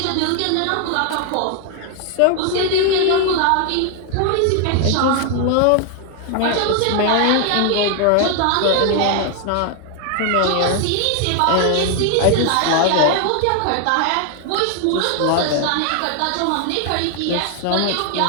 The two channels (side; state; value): both; different; correlation 0.00